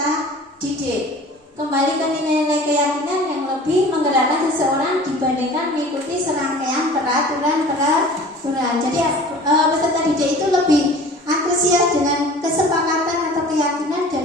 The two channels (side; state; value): both; normal; correlation 0.44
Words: didik. Kembali ke nilai-nilai keyakinan yang lebih menggerakkan seseorang dibandingkan mengikuti serangkaian peraturan. Jadi peserta didik itu lebih antusias dengan kesepakatan atau keyakinan